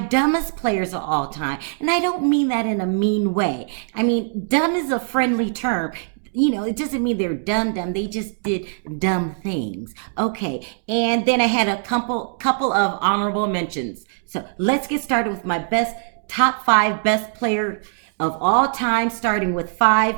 dumbest players of all time. And I don't mean that in a mean way. I mean, dumb is a friendly term. It doesn't mean they're dumb. They just did dumb things. Okay, and then I had a couple of honorable mentions. So let's get started with my top 5 best player of all time, starting with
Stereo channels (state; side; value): silent; left; digital silence